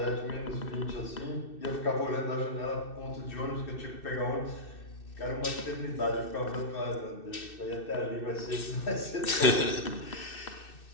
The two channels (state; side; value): late; right; 2.6 ms